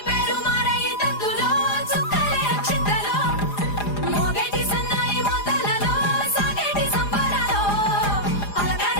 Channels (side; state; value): right; late; 4.9 ms